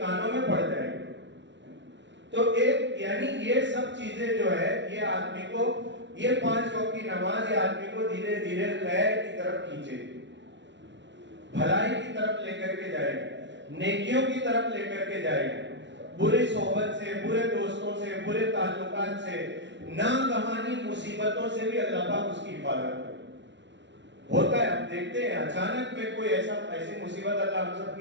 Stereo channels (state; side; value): late; left; 0.52 ms